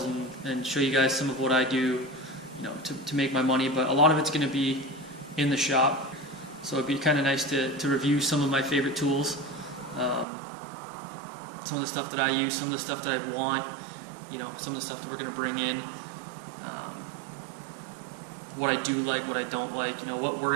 and show you guys some of what I do to make my money. But a lot of it's going to be in the shop. So it'd be kind of nice to review some of my favorite tools, some of the stuff that I use, some of the stuff that I want, some of the stuff that we're going to bring in, what I do like, what I don't like, what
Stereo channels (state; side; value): drops out; left; at 10.2 s